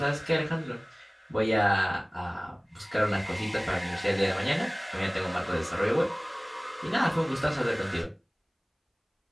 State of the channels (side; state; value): both; identical; correlation 1.00